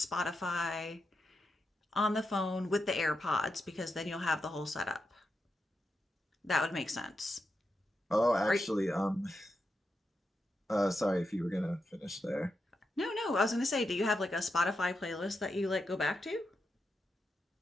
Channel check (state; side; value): normal; both; correlation 0.87